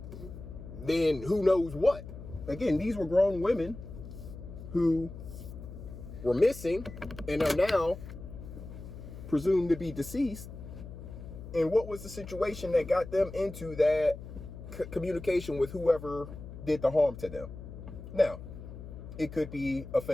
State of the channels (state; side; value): noise; left; hum, 12 dB below the sound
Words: then who knows what? Again, these were grown women who were missing and are now presumed to be deceased. And what was the situation that got them into that communication with whoever did the harm to them? Now, it could be a